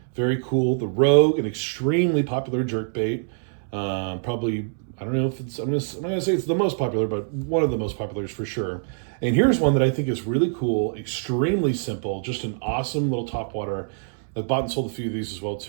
Very cool. The Rogue, an extremely popular jerkbait. Probably, I don't know if it's, I'm gonna say it's the most popular, but one of the most populars for sure. And here's one that I think is really cool, extremely simple, just an awesome little topwater. I've bought and sold a few of these as well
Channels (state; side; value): silent; left; 62 dB below the other